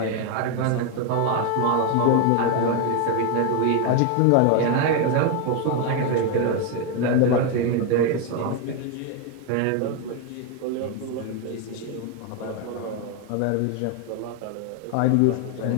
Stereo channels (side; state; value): both; different; correlation 0.01